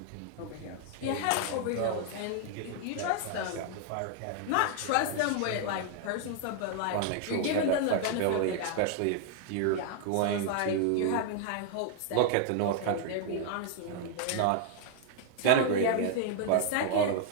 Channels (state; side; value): different; both; correlation 0.00